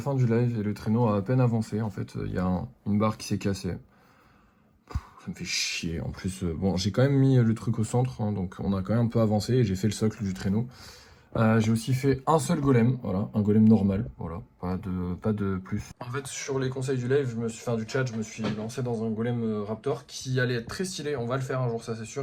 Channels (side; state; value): both; identical; correlation 1.00